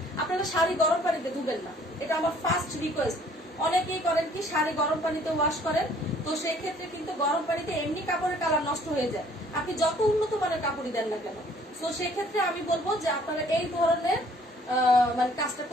আপনারা শাড়ি গরম পানিতে ধুবেন না, এটা আমার ফার্স্ট রিকোয়েস্ট। অনেকেই করেন কি শাড়ি গরম পানিতে ওয়াশ করেন, তো সেই ক্ষেত্রে কিন্তু গরম পানিতে এমনি কাপড়ের কালার নষ্ট হয়ে যায়, আপনি যত উন্নত মানের কাপড়ই দেন না কেন। তো সেই ক্ষেত্রে আমি বলবো যে আপনারা এই ধরনের মানে কাজটা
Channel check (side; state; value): both; normal; correlation 0.58